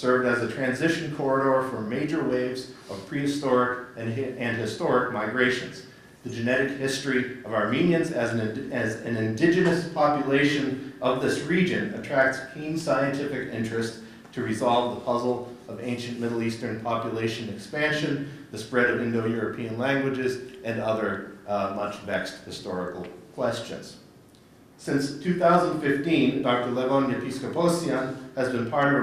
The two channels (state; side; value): identical; both; correlation 1.00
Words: as a transition corridor for major waves of prehistoric and historic migrations. The genetic history of Armenians as an indigenous population of this region attracts keen scientific interest to resolve the puzzle of ancient Middle Eastern population expansion, the spread of Indo-European languages, and other much vexed historical questions. Since 2015, Dr. Levon Yepiskoposyan has been part of